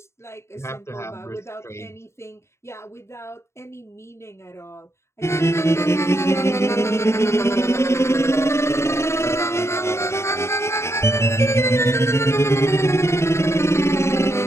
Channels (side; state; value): right; late; 0.13 ms